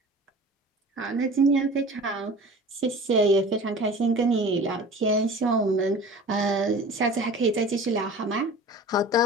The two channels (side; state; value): both; normal; correlation 0.40